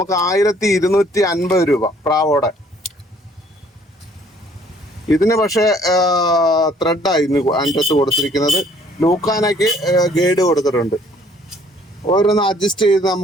1250 രൂപ പ്രാവോടെ. ഇതിന് പക്ഷേ ത്രെഡായിരുന്നു അതിൻ്റെ അകത്ത് കൊടുത്തിരിക്കുന്നത്. ലൂക്കാനയ്ക്ക് ഗൈഡ് കൊടുത്തിട്ടുണ്ട്. ഓരോന്ന് അഡ്ജസ്റ്റ് ചെയ്ത്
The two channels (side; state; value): both; normal; correlation 0.60